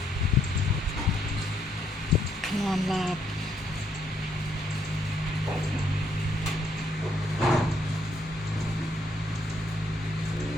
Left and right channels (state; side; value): normal; both; correlation 0.72